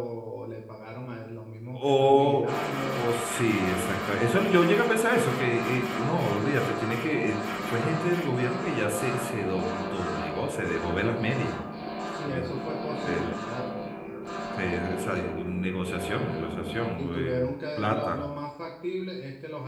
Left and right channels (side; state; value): both; identical; correlation 1.00